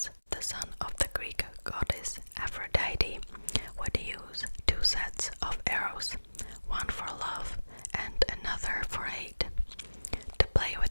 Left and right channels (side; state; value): both; inverted; correlation -1.00